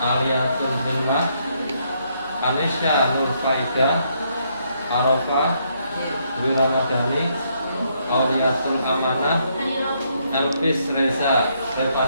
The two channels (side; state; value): both; inverted; correlation -0.74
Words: Aliatul Himah, Anisya Nur Faida, Arafah Dwi Ramadhani, Auliatul Amanah, Elvis Reza